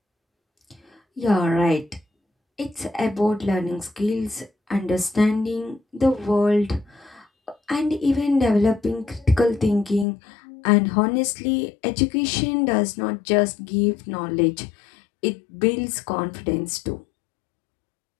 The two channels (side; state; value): right; drops out; at 10.1 s